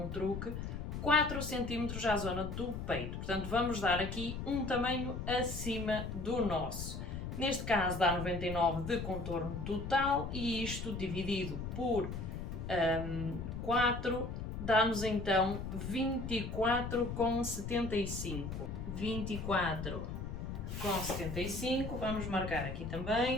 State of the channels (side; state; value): left; noise; rumble, 6 dB below the sound